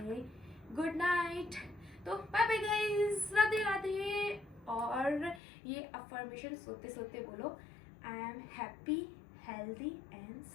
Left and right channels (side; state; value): right; drops out; at 5.4 s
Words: गुड नाइट। तो bye bye guys, Radhe Radhe. और ये अफर्मेशन सोते सोते बोलो, I am happy, healthy and